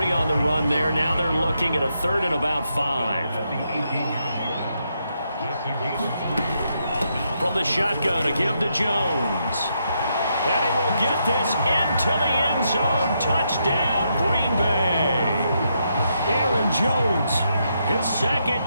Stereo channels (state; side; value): inverted; both; correlation -0.79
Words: on the run there. Now they're looking at a 3rd and about 5. From the shotgun, a give to Jones. And he will get this into the end zone. Touchdown, Green Bay. Aaron Jones, his 2nd